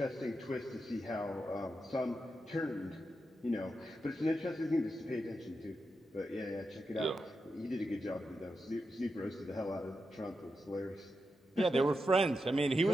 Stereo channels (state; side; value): normal; both; correlation 0.88